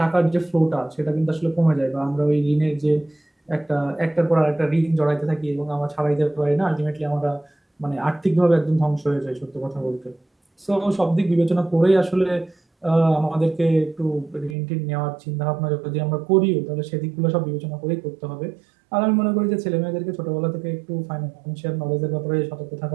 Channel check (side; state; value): left; drops out; at 14.6 s